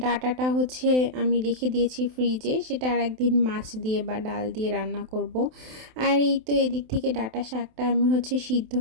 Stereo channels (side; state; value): left; late; 27 ms